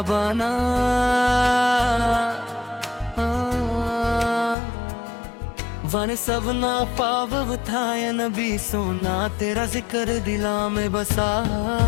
बना। वन सबना पाव था या नबी सोना तेरा जिक्र दिला में बसा।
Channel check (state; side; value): drops out; right; at 4.5 s